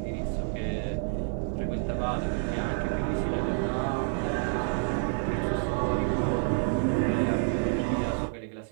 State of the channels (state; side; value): silent; left; 57 dB below the other